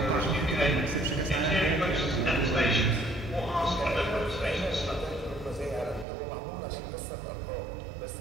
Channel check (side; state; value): left; drops out; at 6.1 s